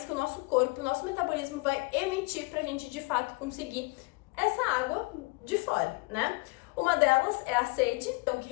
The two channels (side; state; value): right; quieter; 26.6 dB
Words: que o nosso corpo, o nosso metabolismo vai emitir para a gente de fato conseguir essa água de fora, né? Uma delas é a sede, então que